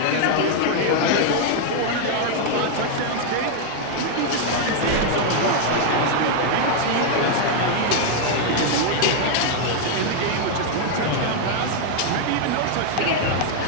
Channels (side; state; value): both; different; correlation 0.00